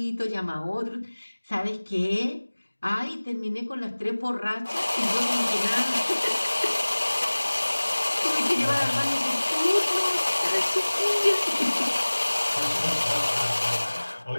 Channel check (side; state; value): both; inverted; correlation -1.00